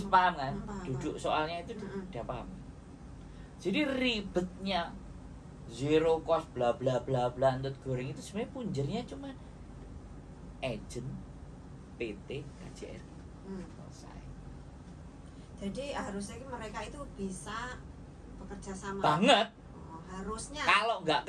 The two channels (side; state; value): both; identical; correlation 1.00